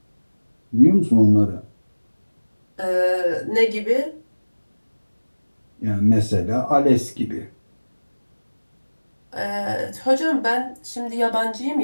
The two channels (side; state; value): both; inverted; correlation -1.00